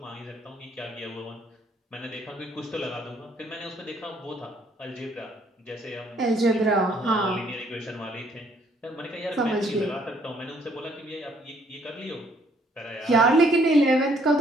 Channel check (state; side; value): normal; both; correlation 0.65